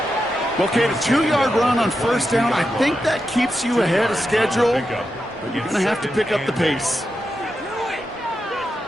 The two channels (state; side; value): normal; both; correlation 0.88